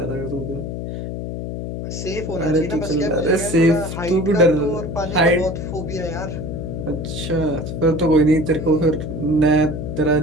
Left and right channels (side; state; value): left; noise; hum, 6 dB below the sound